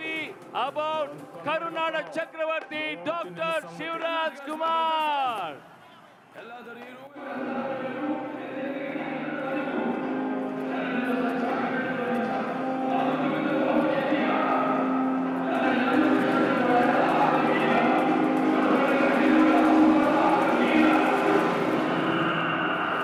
ಅಬೌಟ್ ಕರುನಾಡ ಚಕ್ರವರ್ತಿ ಡಾಕ್ಟರ್ ಶಿವರಾಜ್ ಕುಮಾರ್.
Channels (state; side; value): identical; both; correlation 1.00